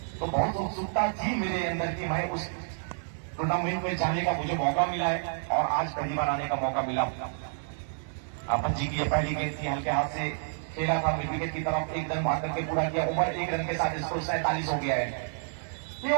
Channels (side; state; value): left; silent; digital silence